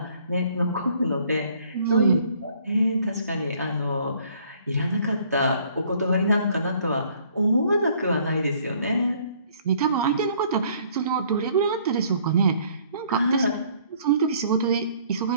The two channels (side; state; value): both; inverted; correlation -0.60